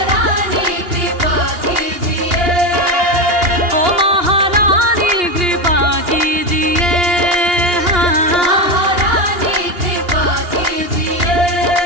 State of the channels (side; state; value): left; late; 2.8 ms